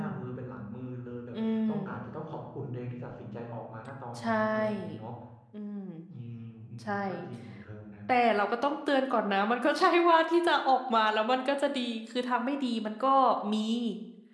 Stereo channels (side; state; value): both; identical; correlation 1.00